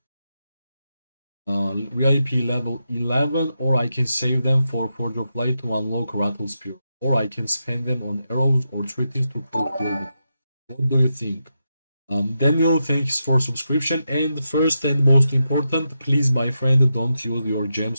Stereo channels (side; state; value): both; inverted; correlation -0.86